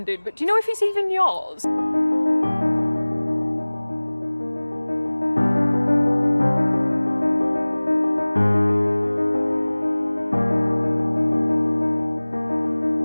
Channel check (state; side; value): inverted; both; correlation -1.00